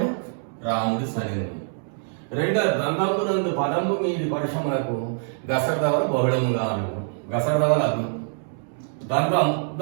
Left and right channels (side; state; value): left; silent; 62 dB below the other